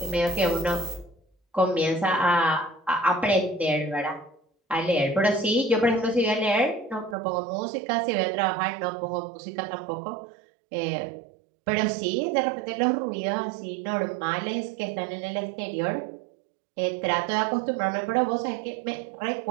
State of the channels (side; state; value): left; drops out; at 7.2 s